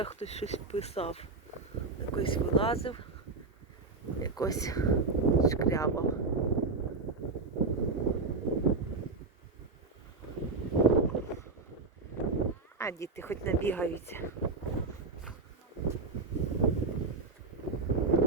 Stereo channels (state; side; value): quieter; left; 3.8 dB